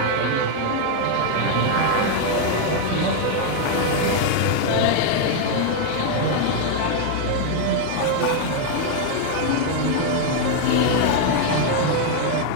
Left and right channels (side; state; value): both; different; correlation 0.00